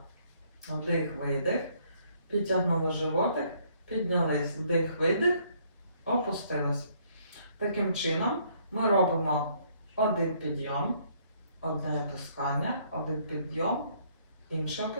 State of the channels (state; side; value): inverted; both; correlation -0.66